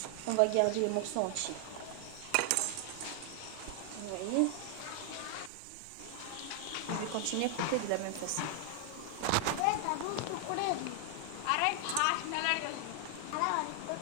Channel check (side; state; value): both; different; correlation 0.00